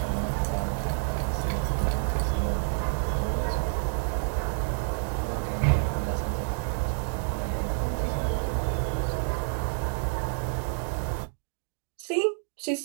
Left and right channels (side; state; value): left; silent; digital silence